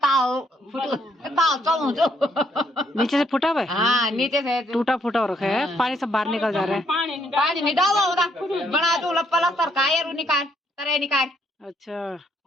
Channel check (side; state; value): both; normal; correlation 0.71